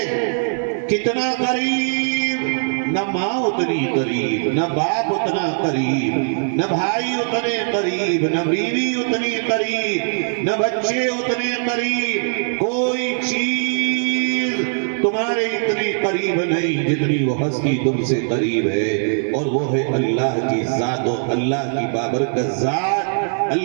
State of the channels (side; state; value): left; silent; 61 dB below the other